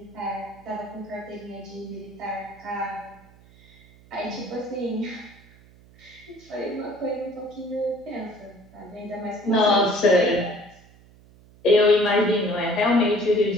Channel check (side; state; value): right; noise; hum, 25 dB below the sound